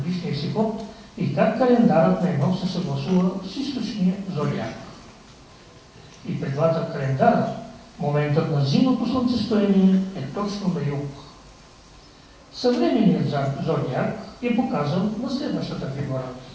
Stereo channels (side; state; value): both; identical; correlation 1.00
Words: си ход и как календарът на Енох се съгласува с източния зодиак. И при двата календара моментът на зимното слънцестояние е точно на юг. Съвременният зодиак е показан на следващата фигура.